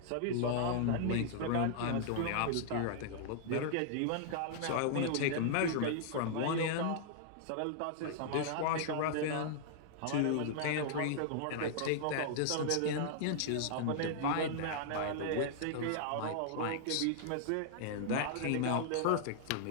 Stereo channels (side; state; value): both; different; correlation -0.01